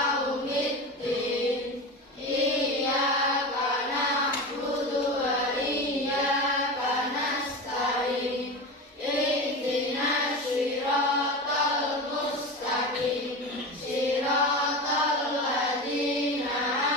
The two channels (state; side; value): normal; both; correlation 0.26